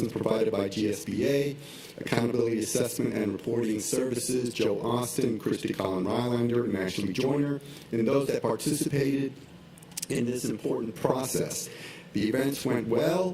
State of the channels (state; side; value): identical; both; correlation 1.00